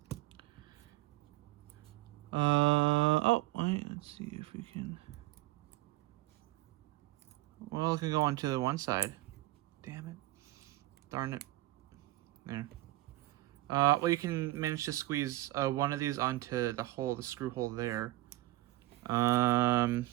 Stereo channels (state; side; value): quieter; left; 17.4 dB